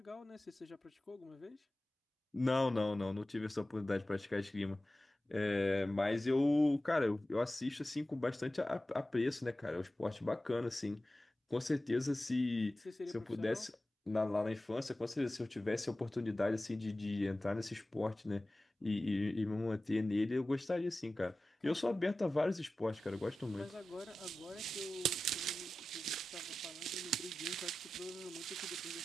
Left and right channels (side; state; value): both; normal; correlation 0.95